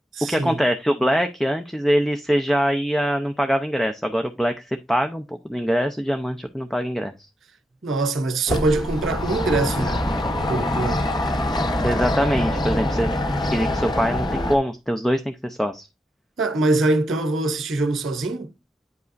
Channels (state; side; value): normal; both; correlation 0.84